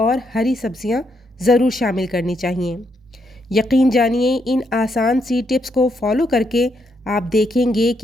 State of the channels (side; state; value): both; normal; correlation 0.77